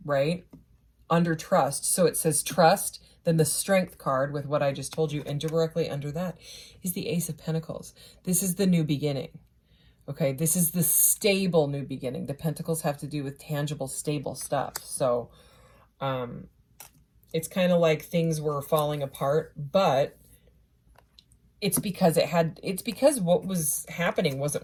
right? Under trust. So it says trust, then the strength card with what I just told you, and directly under that is the Ace of Pentacles. This is the new beginning. Okay, this is the stable new beginning. The Pentacles have to do with tangible, stable stuff. So it's kind of like things were falling apart, but it's because what was happening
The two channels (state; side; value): identical; both; correlation 1.00